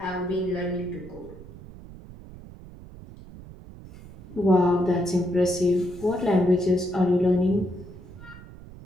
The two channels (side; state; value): right; noise; rumble, 17 dB below the sound